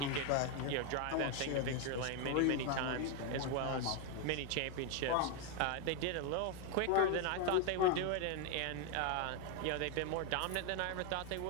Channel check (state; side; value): different; both; correlation 0.01